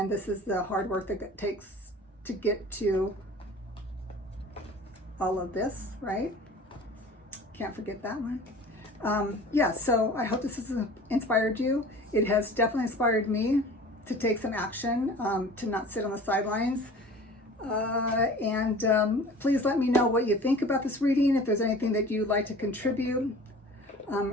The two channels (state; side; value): normal; both; correlation 0.43